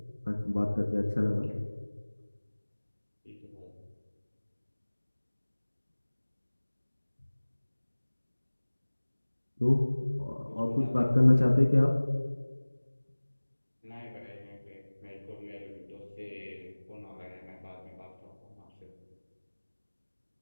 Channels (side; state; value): both; inverted; correlation -1.00